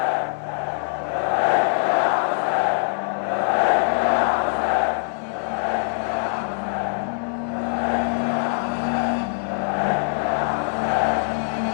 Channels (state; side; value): silent; right; 58 dB below the other